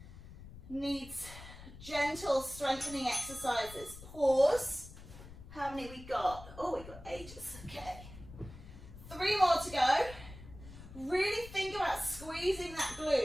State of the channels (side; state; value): left; noise; rumble, 15 dB below the sound